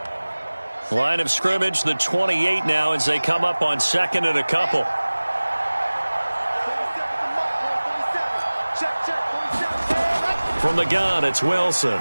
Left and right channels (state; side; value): inverted; both; correlation -1.00